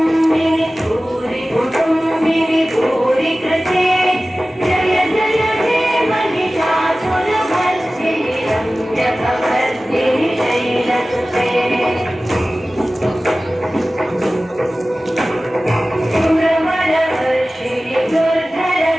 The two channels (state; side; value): normal; both; correlation 0.97